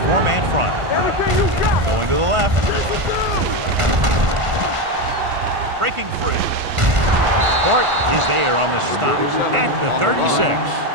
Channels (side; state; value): left; late; 1.5 ms